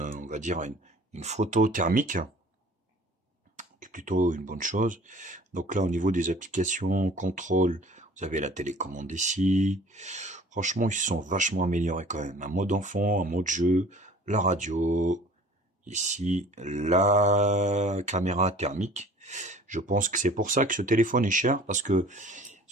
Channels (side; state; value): both; normal; correlation 0.48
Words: va dire une photo thermique, qui est plutôt une bonne chose. Donc là, au niveau des applications, contrôle, vous avez la télécommande ici. Franchement, ils se sont vachement améliorés quand même. Un mode enfant, un mode jeu, la radio, ici, la caméra thermique. Je pense que c'est pour ça que ce téléphone est cher, parce que